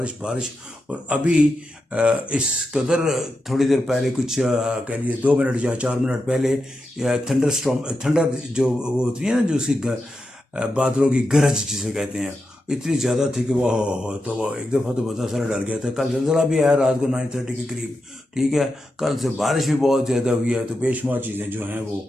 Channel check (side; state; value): both; normal; correlation 0.88